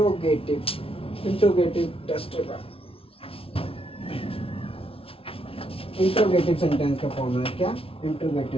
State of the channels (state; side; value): late; right; 0.26 ms